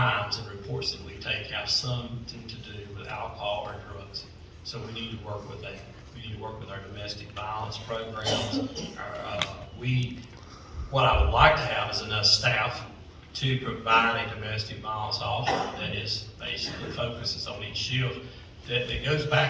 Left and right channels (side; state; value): both; identical; correlation 1.00